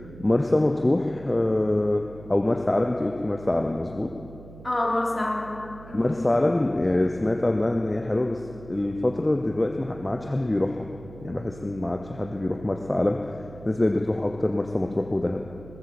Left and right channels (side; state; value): right; noise; hum, 17 dB below the sound